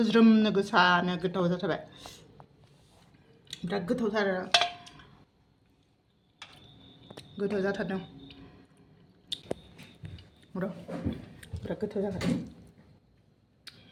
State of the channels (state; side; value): identical; both; correlation 1.00